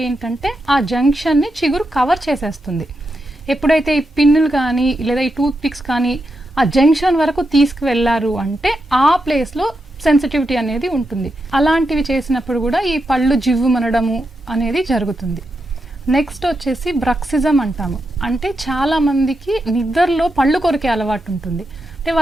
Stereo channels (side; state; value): both; normal; correlation 0.86